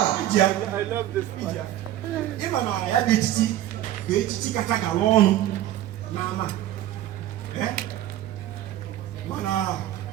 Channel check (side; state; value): left; quieter; 13.2 dB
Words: Iji ya. Ịma na ya bụ echichi bụ echichi kacha gala ọnụ n'ama. Mana